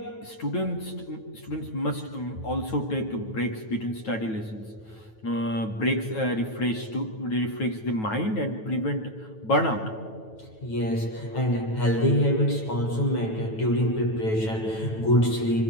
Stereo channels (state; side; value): late; right; 9.2 ms